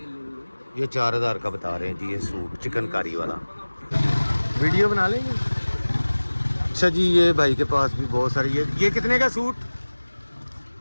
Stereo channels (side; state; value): both; inverted; correlation -1.00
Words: ये 4000 का बता रहे हैं जी ये सूट चिकनकारी वाला। वीडियो बना लेंगे? अच्छा जी, ये भाई के पास भी बहुत सारी, ये कितने का सूट?